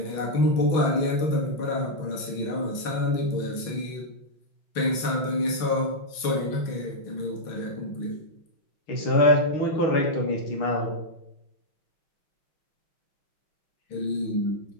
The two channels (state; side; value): late; right; 6.2 ms